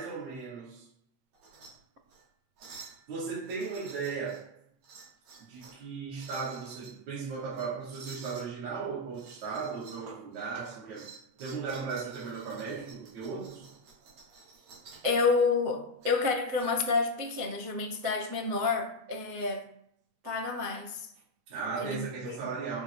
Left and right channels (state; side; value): late; left; 7.8 ms